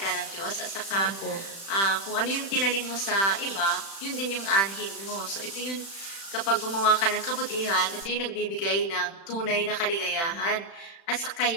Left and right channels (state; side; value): late; right; 36 ms